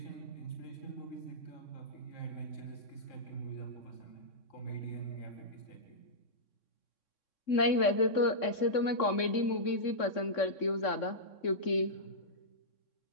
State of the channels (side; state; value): right; late; 3.6 ms